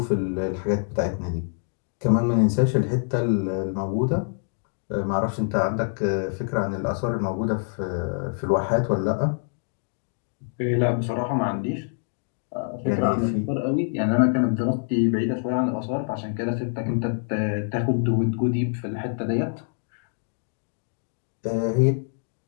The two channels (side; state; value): right; silent; digital silence